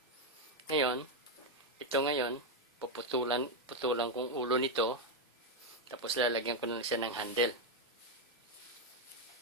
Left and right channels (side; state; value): both; normal; correlation 0.04